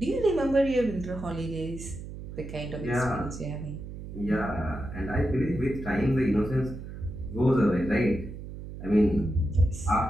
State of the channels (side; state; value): right; noise; hum, 10 dB below the sound